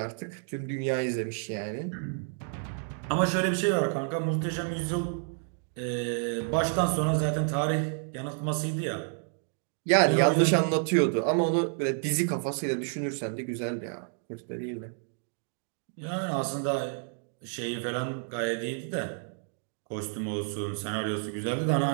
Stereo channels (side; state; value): left; silent; 58 dB below the other